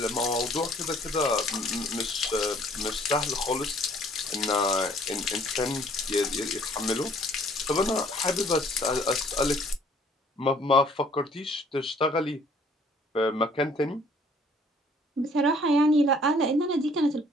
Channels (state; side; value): normal; both; correlation 0.59